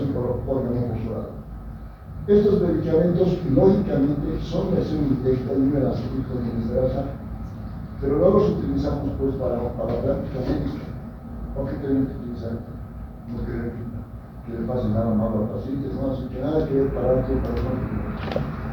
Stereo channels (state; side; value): identical; both; correlation 1.00